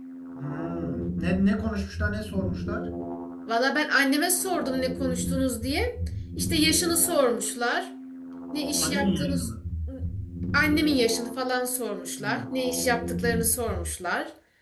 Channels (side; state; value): both; identical; correlation 1.00